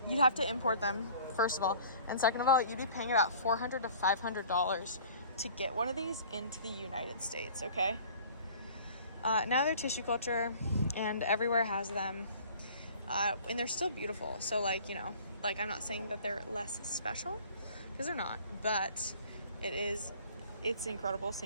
you'd have to import them, first of all, and second of all, you'd be paying about $400 to $500 to get one of these into the United States, okay? Now they're tissue culture, and everywhere has them, and they're still beautiful. So, I'm not saying that they're less special, because they're not, but it's incredible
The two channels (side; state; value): both; inverted; correlation -0.49